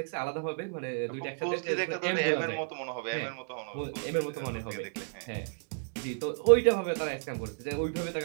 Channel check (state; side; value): silent; left; digital silence